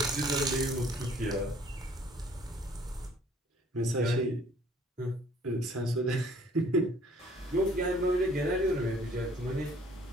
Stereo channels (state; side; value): normal; both; correlation 0.57